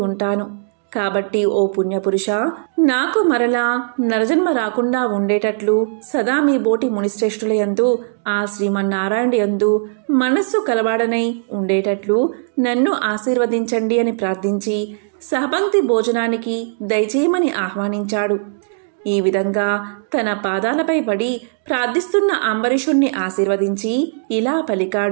ఉంటాను. కాబట్టి ఓ పుణ్యపురుష, నాకు మరలా నరజన్మ రాకుండా ఉండేటట్లు సదా మీ బోటి మునిశ్రేష్ఠుల యందు, ఆ శ్రీమన్నారాయణ యందు మనస్సు కలవాడనై ఉండేటట్లు నన్ను ఆశీర్వదించండి అని ప్రార్థించి సహపంక్తి భోజనానికి దయచేయమని ఆహ్వానించాడు. ఈ విధంగా తన పాదాలపై పడి ప్రార్థిస్తున్న అంబరీషుణ్ణి ఆశీర్వదించి ఇలా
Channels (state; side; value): silent; left; digital silence